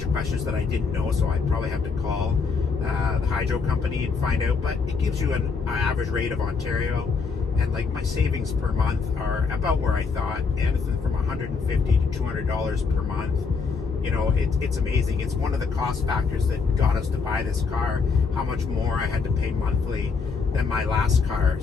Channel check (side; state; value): right; quieter; 5.1 dB